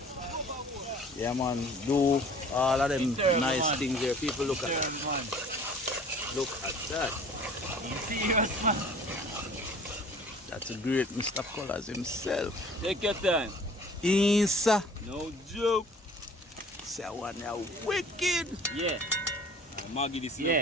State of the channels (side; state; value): both; normal; correlation 0.49